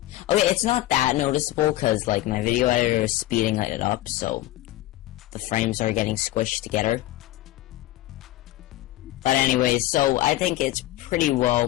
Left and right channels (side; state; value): right; quieter; 15.7 dB